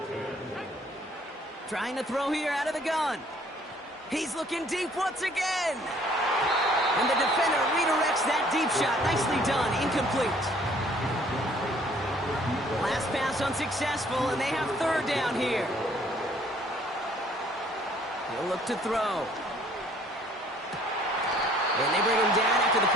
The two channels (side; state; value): both; normal; correlation 0.59